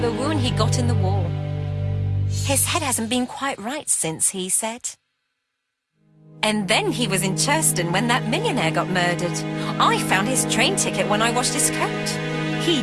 a wound he got in the war. His head hasn't been quite right since, he said. And then he was in Churston when that millionaire got murdered. I found his train ticket when I washed his coat. He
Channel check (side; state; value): both; identical; correlation 1.00